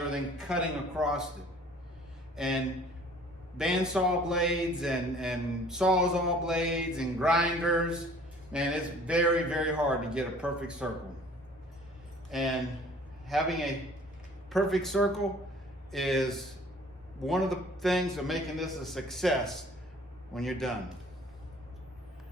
than cutting across it. And bandsaw blades and sawzall blades and grinders, man, it's very, very hard to get a perfect circle. And having a perfect circle is one of the things of making this a success when you're done.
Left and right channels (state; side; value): normal; both; correlation 0.52